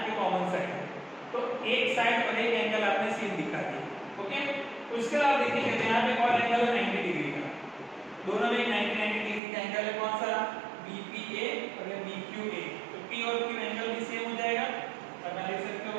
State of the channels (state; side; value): drops out; left; at 9.4 s